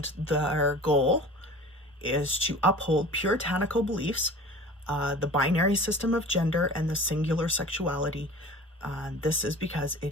their goal is to uphold puritanical beliefs, the binary system of gender, and the singular sexuality. This is because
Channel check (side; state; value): both; normal; correlation 0.40